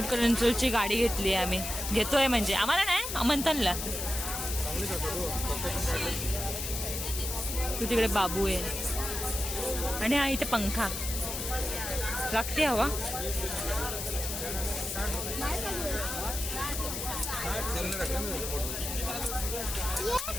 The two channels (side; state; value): left; noise; hiss, 4 dB below the sound